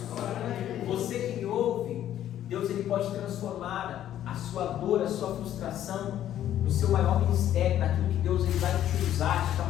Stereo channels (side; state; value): right; quieter; 11.6 dB